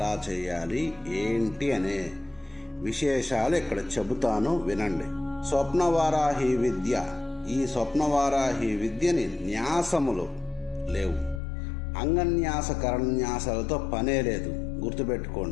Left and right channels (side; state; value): right; drops out; at 11.4 s